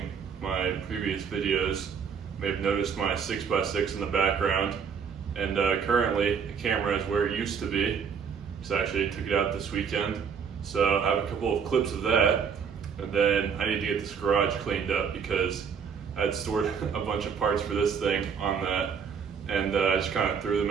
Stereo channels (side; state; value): left; quieter; 6.7 dB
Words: my previous videos may have noticed my 6x6 in the background, and currently the camera is where it used to be. So I actually took it out this weekend, so I have a couple of clips of that, and then I need to get this garage cleaned up because I had stored a bunch of parts for this thing on that, and I just kind of threw